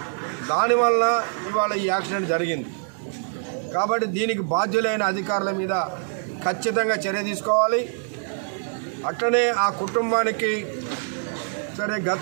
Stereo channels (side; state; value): left; silent; 62 dB below the other